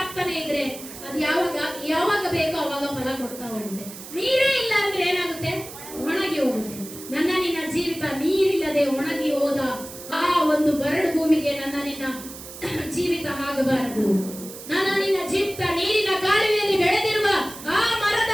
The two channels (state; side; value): noise; right; hiss, 14 dB below the sound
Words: ಇದ್ರೆ ಅದು ಯಾವಾಗ ಬೇಕೋ ಅವಾಗ ಫಲ ಕೊಡ್ತಾ ಹೋಗುತ್ತೆ. ನೀರೇ ಇಲ್ಲ ಅಂದ್ರೆ ಏನಾಗುತ್ತೆ? ಒಣಗಿ ಹೋಗುತ್ತೆ. ನನ್ನ ನಿನ್ನ ಜೀವಿತ ನೀರಿಲ್ಲದೆ ಒಣಗಿ ಹೋದ ಆ ಒಂದು ಬರಡು ಭೂಮಿಗೆ ನನ್ನ ನಿನ್ನ ಜೀವಿತ ಆಗಬಾರದು. ನನ್ನ ನಿನ್ನ ಜೀವಿತ ನೀರಿನ ಕಾಲುವೆಯಲ್ಲಿ ಬೆಳೆದಿರುವ ಆ ಮರದ